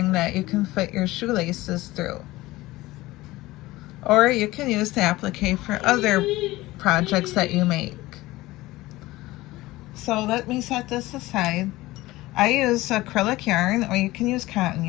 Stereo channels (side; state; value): right; quieter; 18.6 dB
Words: that you can fit your shoelaces through. Or you can use the applique for other projects that you make. So let me set this aside. I use acrylic yarn, or you can use cotton